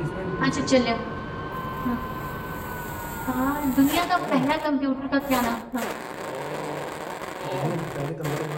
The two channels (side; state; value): both; identical; correlation 1.00